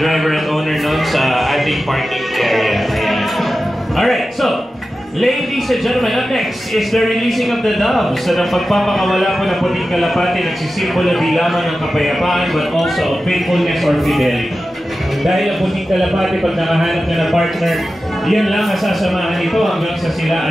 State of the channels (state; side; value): normal; both; correlation 0.93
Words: at owner nun sa ating parking area. Ayan. Alright, so, ladies and gentlemen, up next is the releasing of the doves. Sa pagpapakawala po ng puting kalapati, nagsisimbolo di lamang ng kapayapaan but also of faithfulness or fidelity. Dahil ang puting kalapati, pag nakahanap na ng partner, yan lang ang sasamahan nito hanggang sa sila